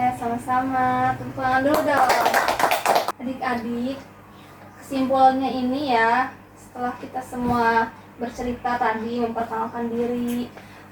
sama-sama. Tepuk tangan dulu dong. Adik-adik, kesimpulannya ini ya, setelah kita semua bercerita tadi, memperkenalkan diri,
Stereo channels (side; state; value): both; identical; correlation 1.00